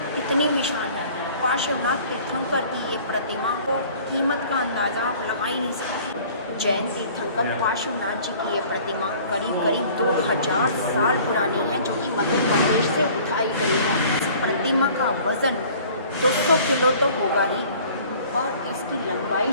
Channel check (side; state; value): both; inverted; correlation -0.50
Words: कितनी विशाल है। पार्श्वनाथ तीर्थंकर की ये प्रतिमा को कीमत का अंदाज़ा आप लगा ही नहीं सकते। जैन तीर्थंकर पार्श्वनाथ जी की ये प्रतिमा करीब 2000 साल पुरानी है जो कि मध्य प्रदेश से उठाई गई है। इस प्रतिमा का वज़न 200 किलो तो होगा ही और इसकी लंबाई